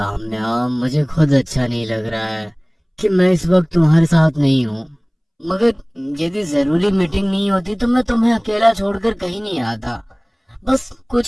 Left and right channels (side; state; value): both; identical; correlation 1.00